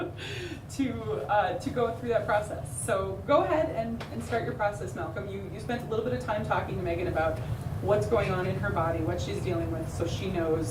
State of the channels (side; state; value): both; identical; correlation 1.00